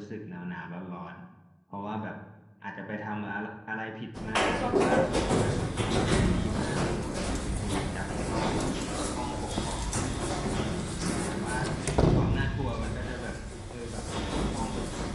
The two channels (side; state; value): both; identical; correlation 1.00